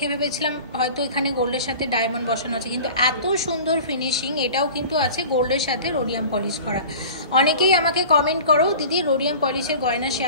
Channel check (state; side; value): inverted; both; correlation -0.40